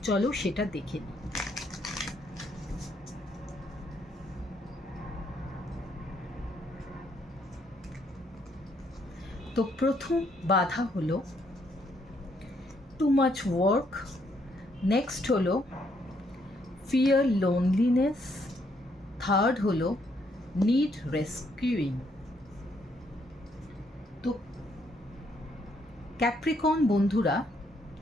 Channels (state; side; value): normal; both; correlation 0.72